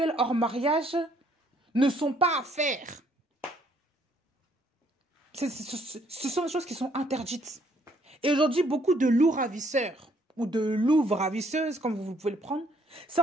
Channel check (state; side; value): normal; both; correlation 0.66